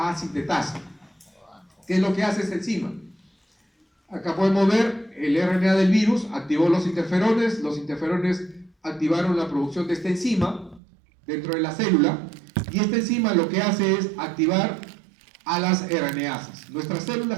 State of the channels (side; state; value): left; drops out; at 10.8 s